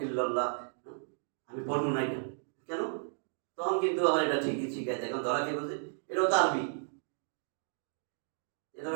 ইল্লাল্লাহ আমি পড়বো না এটা। কেন? তখন কিন্তু আবার এটা ঠিকই শিখাইতে, এখন ধরা কে বোঝে? এটাও তো আরবি,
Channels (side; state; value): left; silent; digital silence